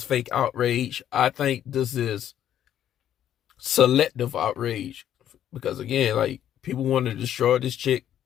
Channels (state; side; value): quieter; right; 10.7 dB